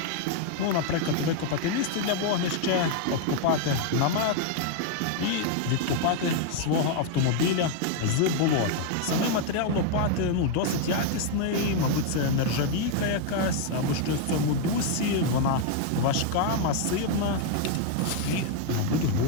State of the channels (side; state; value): both; different; correlation 0.00